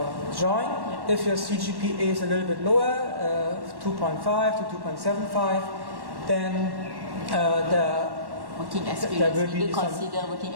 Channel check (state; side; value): late; left; 1.1 ms